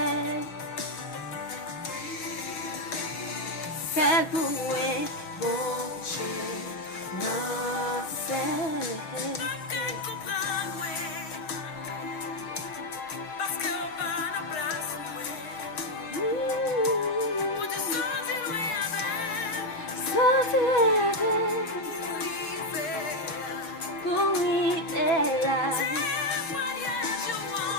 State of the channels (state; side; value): late; right; 6.2 ms